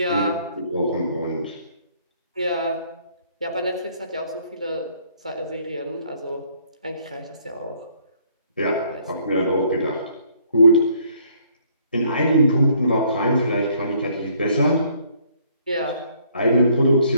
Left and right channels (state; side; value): inverted; both; correlation -0.64